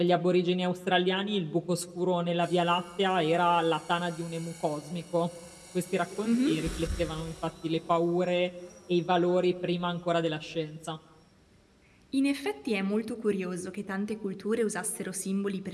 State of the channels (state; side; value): identical; both; correlation 1.00